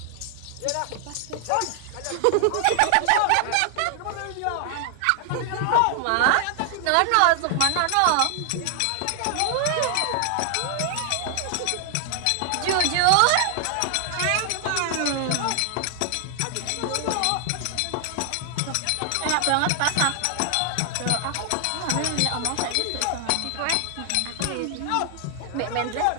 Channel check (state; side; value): different; both; correlation 0.00